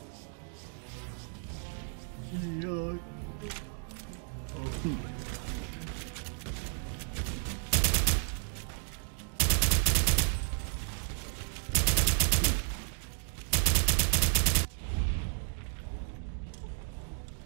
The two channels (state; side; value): silent; left; 56 dB below the other